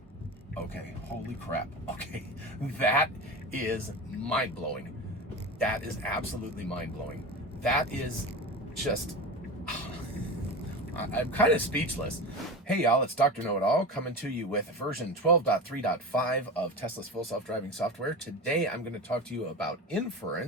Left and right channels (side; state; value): both; normal; correlation 0.27